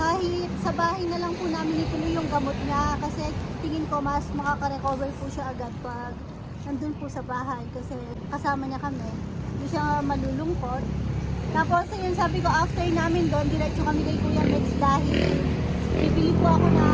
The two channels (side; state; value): both; identical; correlation 1.00